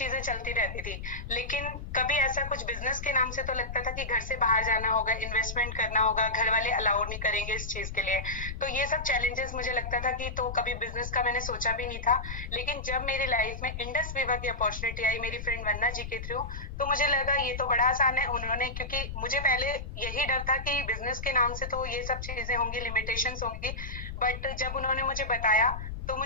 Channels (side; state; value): left; noise; rumble, 8 dB below the sound